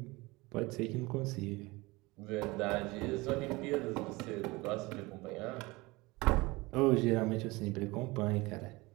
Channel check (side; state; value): left; quieter; 22.7 dB